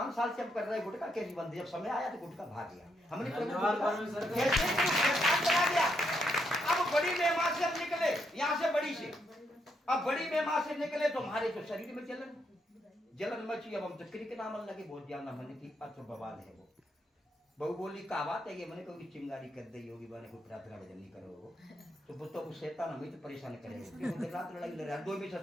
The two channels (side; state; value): both; normal; correlation 0.78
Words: साल से हम कर रहे गुटखा कैसी बंदी, जब समय आया तो गुटखा भाग गया। हमने गया। अब बड़ी मेहमान से हम निकले, यहाँ से बड़ी से, अब बड़ी मेहमान से निकले तो हमारे तो शरीर में जलन मची। अब हम तो क्रिक नाम लगे बहुत ज्यादा, मैंने की अच्छा बवाल है वो। बहू बोली का बात है ये, मैंने कोई चिंगारी कर दी होगी, मैंने कोई प्रार्थना भजन नहीं करो तो वो तो शैतान हमें तो परेशान करेगा। रात लड़ाई लड़ रहा है, 2 भी